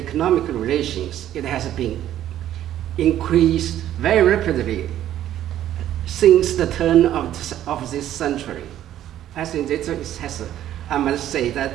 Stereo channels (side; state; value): left; quieter; 12.0 dB